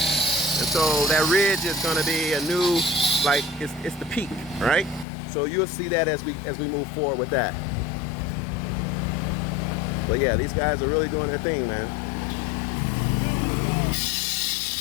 so that ridge is going to be a new, like, it's the peak, right? So you'll see that as we move forward with that. But yeah, these guys are really doing their thing, man.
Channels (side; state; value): right; drops out; at 5.1 s